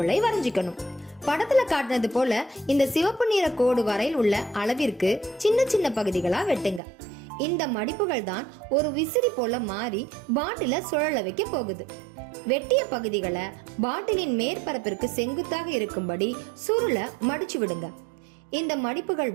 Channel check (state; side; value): drops out; left; at 6.8 s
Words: வரைஞ்சிக்கணும். படத்துல காட்டினது போல இந்த சிவப்பு நிற கோடு வரையில் உள்ள அளவிற்கு சின்ன சின்ன பகுதிகளா வெட்டுங்க. இந்த மடிப்புகள் தான் ஒரு விசிறி போல மாறி பாட்டில சுழல வைக்க போகுது. வெட்டிய பகுதிகளை பாட்டிலின் மேற்பரப்பிற்கு செங்குத்தாக இருக்கும்படி சுருளை மடிச்சு விடுங்க. இந்த மடிப்புகள்